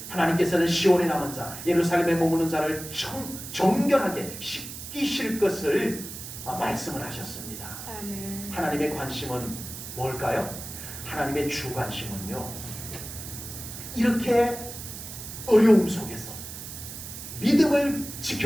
하나님께서는 시온에 남은 자, 예루살렘에 머무는 자를 정결하게 씻기실 것을 말씀을 하셨습니다. 아멘. 하나님의 관심은 뭘까요? 하나님의 주 관심은요, 이렇게 어려움 속에서 믿음을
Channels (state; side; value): noise; right; hiss, 10 dB below the sound